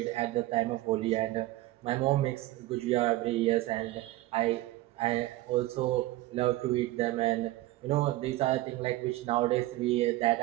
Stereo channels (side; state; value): left; quieter; 17.2 dB